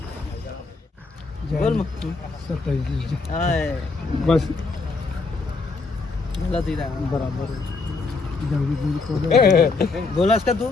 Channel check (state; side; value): quieter; right; 4.0 dB